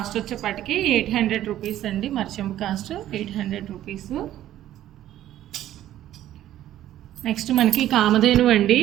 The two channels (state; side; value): quieter; left; 12.8 dB